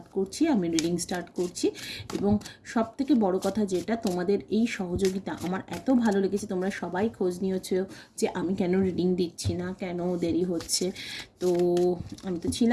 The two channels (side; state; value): both; identical; correlation 1.00